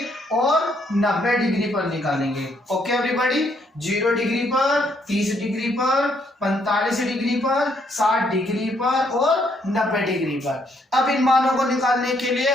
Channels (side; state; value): both; normal; correlation 0.71